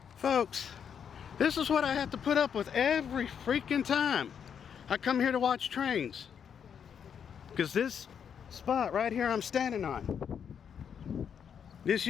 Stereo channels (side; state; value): right; quieter; 7.7 dB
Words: Folks, this is what I have to put up with every freaking time I come here to watch trains. Because this spot right here I'm standing on, this